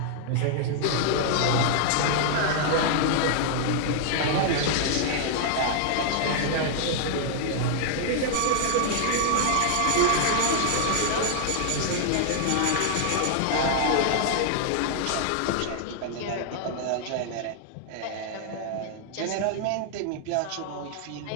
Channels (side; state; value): both; different; correlation 0.00